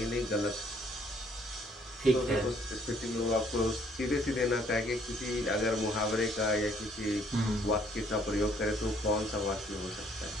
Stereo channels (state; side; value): normal; both; correlation 0.64